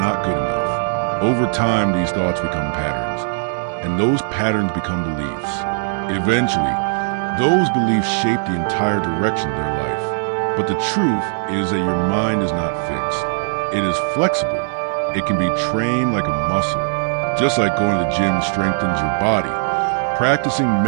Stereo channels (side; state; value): left; silent; digital silence